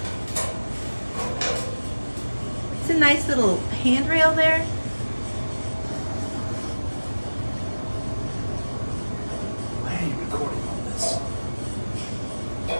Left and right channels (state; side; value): inverted; both; correlation -1.00